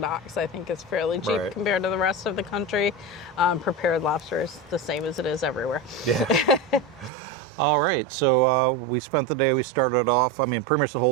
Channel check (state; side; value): drops out; left; at 7.1 s